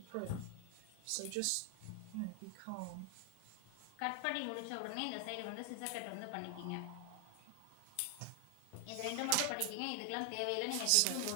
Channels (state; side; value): different; both; correlation 0.00